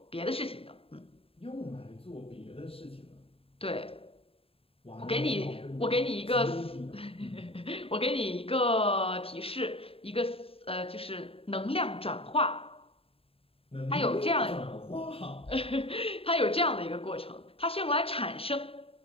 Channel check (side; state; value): right; late; 0.27 ms